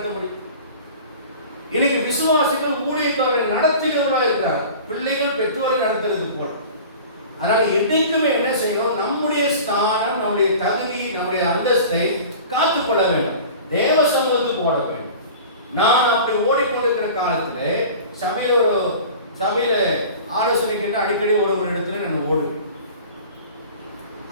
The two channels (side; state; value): both; inverted; correlation -0.40